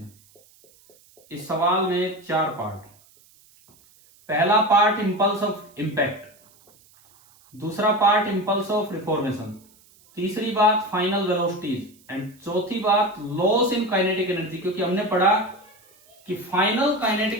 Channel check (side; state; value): right; noise; hiss, 29 dB below the sound